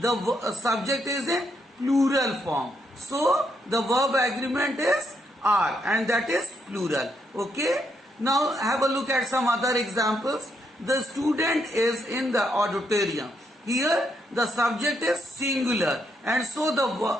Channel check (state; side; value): normal; both; correlation 0.77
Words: the subject is in plural form. So the verb agreement is are, and that is plural. Okay. Now have a look at some other examples. The student is in the auditorium. Here the subject is singular, and so the